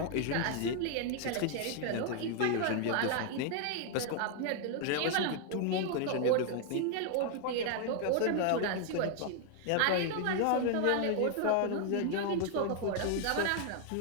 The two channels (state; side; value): different; both; correlation 0.00